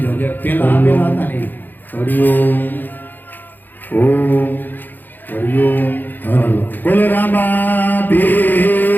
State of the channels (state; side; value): late; right; 0.088 ms